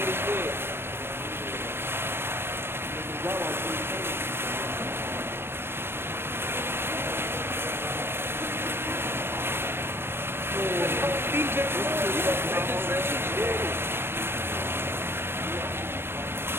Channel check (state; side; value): late; left; 0.11 ms